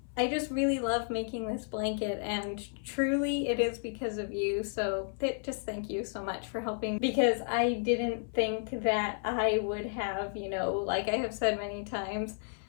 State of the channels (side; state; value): right; silent; 56 dB below the other